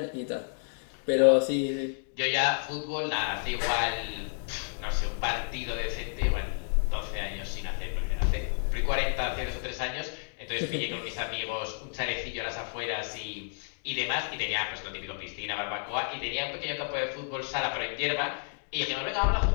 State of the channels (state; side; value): silent; right; 57 dB below the other